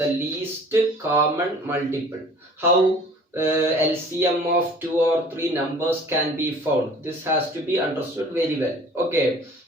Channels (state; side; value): normal; both; correlation 0.49